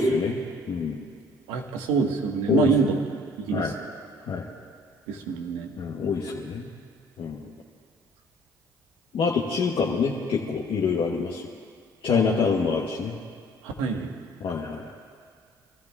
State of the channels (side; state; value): both; normal; correlation 0.54